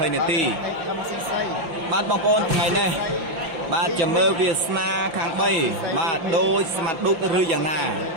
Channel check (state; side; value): late; left; 5.7 ms